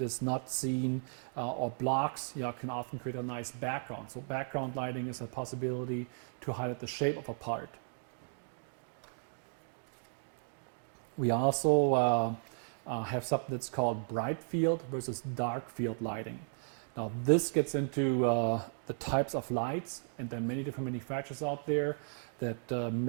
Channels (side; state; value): left; silent; digital silence